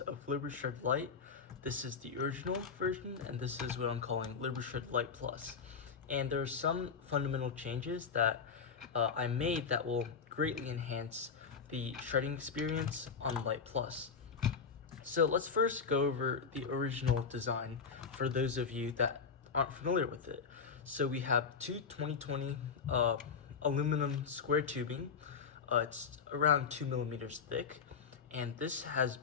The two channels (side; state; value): right; quieter; 5.8 dB